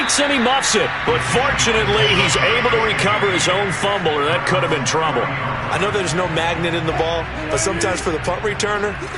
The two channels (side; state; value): both; identical; correlation 1.00